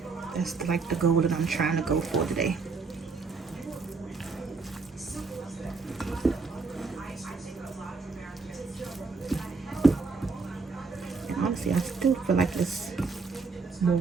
That's like the goal that I'm trying to go for today. Honestly, I still feel like there's more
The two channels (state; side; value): quieter; left; 4.4 dB